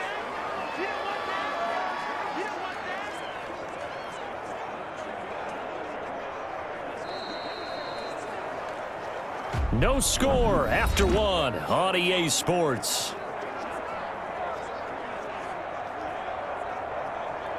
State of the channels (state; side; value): identical; both; correlation 1.00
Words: No score after 1 on EA Sports.